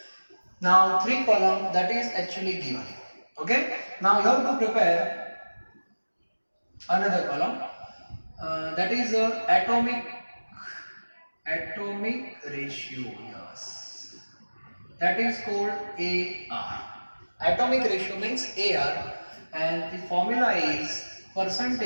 Now 3 column that is actually given. Okay, now you have to prepare another column that is atomic ratio. Yes, that is called AR. Atomic ratio means AR, and the formula is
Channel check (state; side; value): inverted; both; correlation -1.00